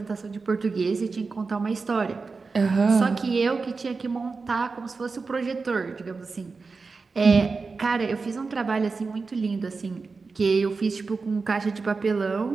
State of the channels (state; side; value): quieter; left; 4.4 dB